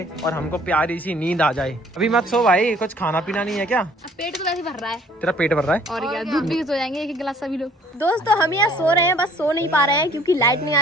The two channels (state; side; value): normal; both; correlation 0.57